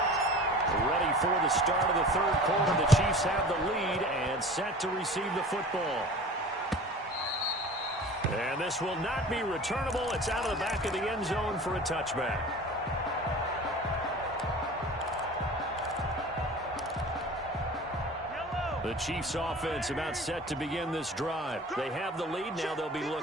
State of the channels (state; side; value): normal; both; correlation 0.40